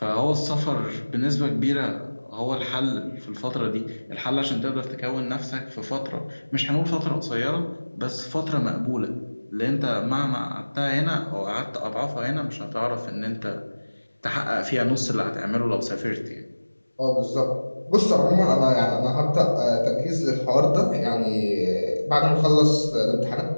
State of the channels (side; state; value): both; inverted; correlation -1.00